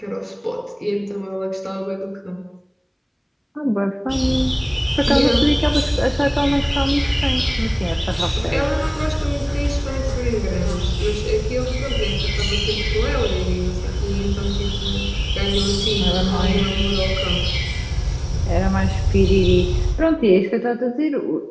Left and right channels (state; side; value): identical; both; correlation 1.00